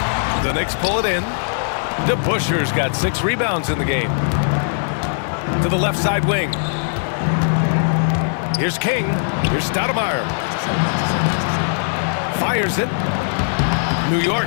The Knicks pull it in. DeBusschere's got 6 rebounds in the game. To the left side wing. Here's King. Here's Stoudemire. Fires it. New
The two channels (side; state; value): right; silent; digital silence